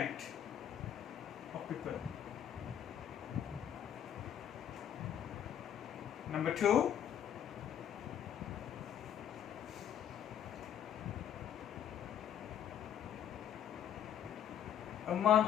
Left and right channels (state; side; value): quieter; right; 9.7 dB